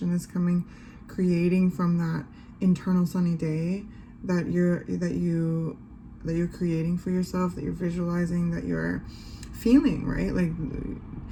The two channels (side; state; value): both; identical; correlation 1.00